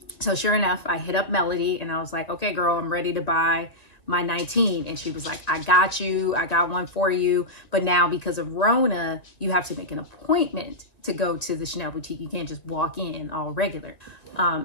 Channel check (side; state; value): right; late; 1.9 ms